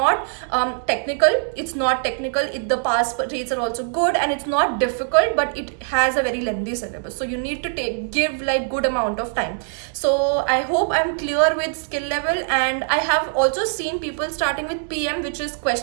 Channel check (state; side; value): silent; left; digital silence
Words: technical, the pass rates are also good, and it's not difficult, but it has a very lengthy syllabus, so you need to give like good amount of time. So I hope I'm clear with skill level. And I have also seen people starting with PM, which is